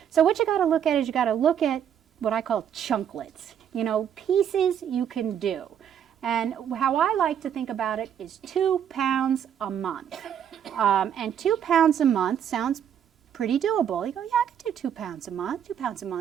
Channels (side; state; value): left; quieter; 9.0 dB